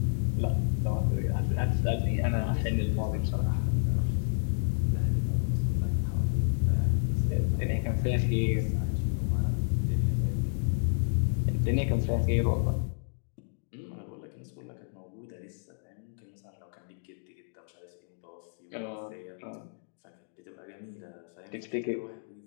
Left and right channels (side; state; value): right; silent; digital silence